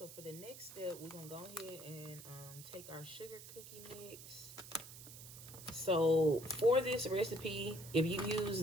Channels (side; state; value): right; noise; hiss, 14 dB below the sound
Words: for the next step, we're going to go ahead and take our sugar cookie mix. So for this recipe, if you use